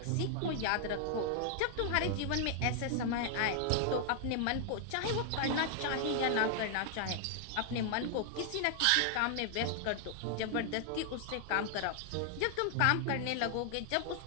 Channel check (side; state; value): both; different; correlation 0.00